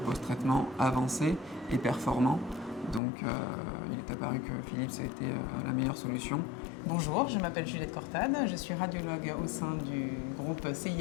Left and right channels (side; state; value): right; drops out; at 3.0 s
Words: avancés et performants. Donc il est apparu que Philips était la meilleure solution. Bonjour, je m'appelle Juliette Cortade, je suis radiologue au sein du groupe